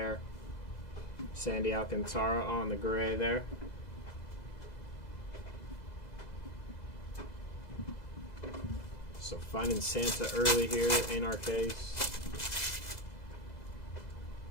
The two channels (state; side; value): late; right; 2.0 ms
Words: Sandy Alcantara on the gray there. So finding Santa early here in our case.